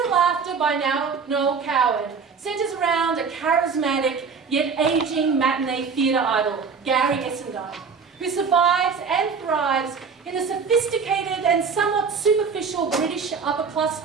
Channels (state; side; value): quieter; left; 5.6 dB